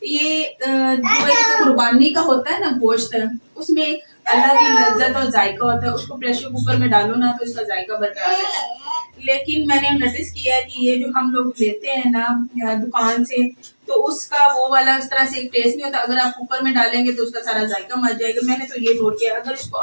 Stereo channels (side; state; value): both; inverted; correlation -1.00